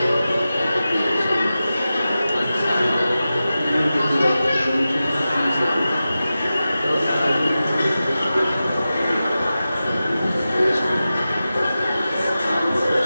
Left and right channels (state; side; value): inverted; both; correlation -0.94